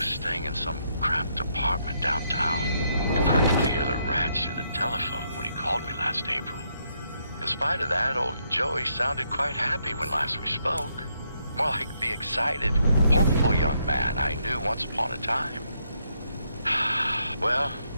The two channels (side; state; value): both; inverted; correlation -0.76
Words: staying in some cramped apartment downtown. You practically hear the rats through the telephone when he called me last April. In spite of that, old Joey sounded quite happy when last we spoke. More like the excited, hopeful young man I knew once upon a time. Well,